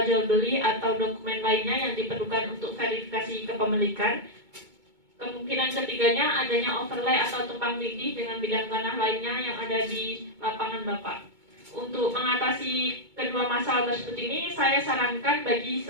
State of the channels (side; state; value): left; late; 2.2 ms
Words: jual beli atau dokumen lainnya yang diperlukan untuk verifikasi kepemilikan. Kemungkinan ketiganya adanya overlay atau tumpang tindih dengan bidang tanah lainnya yang ada di lapangan Bapak. Untuk mengatasi kedua masalah tersebut ini, saya sarankan bagi